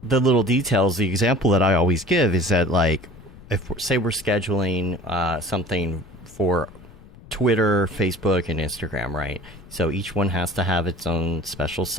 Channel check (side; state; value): left; noise; rumble, 21 dB below the sound